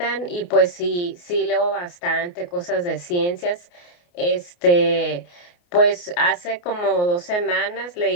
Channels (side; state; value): right; late; 28 ms